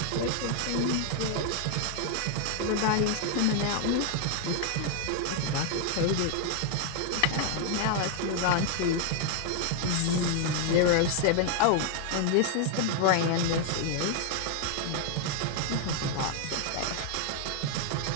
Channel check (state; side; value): different; both; correlation 0.00